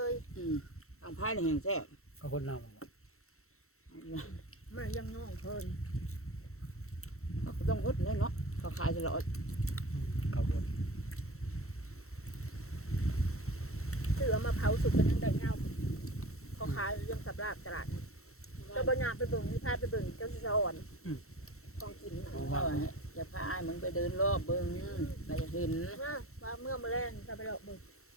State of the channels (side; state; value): right; late; 0.63 ms